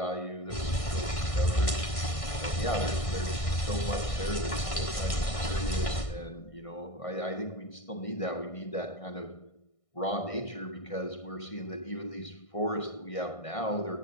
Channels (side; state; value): right; late; 1.6 ms